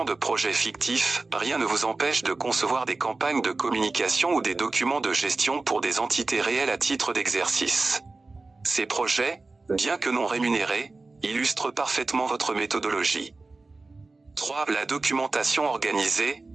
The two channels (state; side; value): quieter; left; 3.5 dB